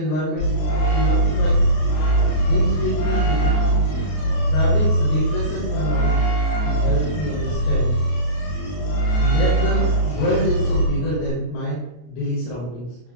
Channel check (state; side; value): late; right; 33 ms